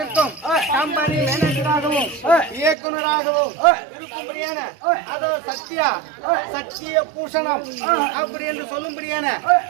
கம்பெனி மேனேஜராகவும் இயக்குநராகவும் இருக்கும்படியான அதாவது சத்திய பூஷணம் அப்படி என்று சொல்லும்படியான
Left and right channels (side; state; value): left; drops out; at 2.8 s